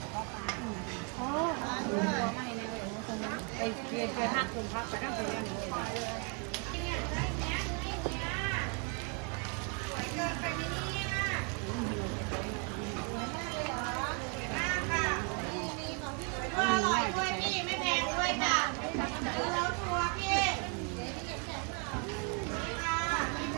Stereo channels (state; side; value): quieter; left; 35.8 dB